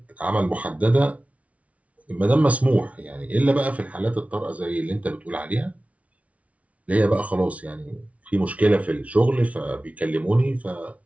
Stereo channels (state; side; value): late; left; 0.066 ms